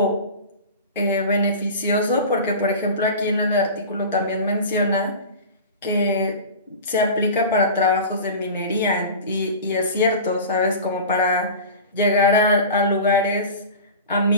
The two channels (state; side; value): inverted; both; correlation -0.34